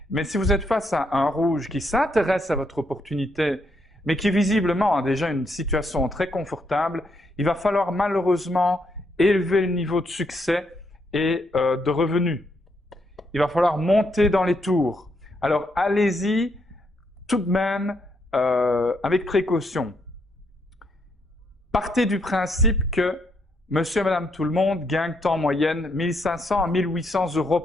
mais si vous êtes face à un rouge qui s'intéresse à votre opportunité, mais qui visiblement a déjà une situation très confortable, il va falloir malheureusement élever le niveau de succès et de revenus. Il va falloir monter dans les tours. Alors allez-y tout de même avec précaution. Partez du principe que monsieur et madame tout le monde gagnent en moyenne 1500 à 1800 euros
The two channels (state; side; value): normal; both; correlation 0.76